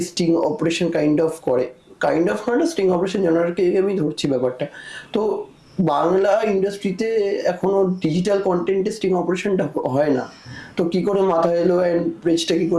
sting operation kind of করে, কাইন্ড অফ না, স্টিং অপারেশন জানারকে আমি ধরছি ব্যাপারটা। তো বাংলা ইন্ডাস্ট্রিতে এখনো ডিজিটাল কন্টেন্টে স্টিং অপারেশনটা হয় না, তো কি করে মাথা এলো অ্যান্ড পেজটা কি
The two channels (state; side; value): identical; both; correlation 1.00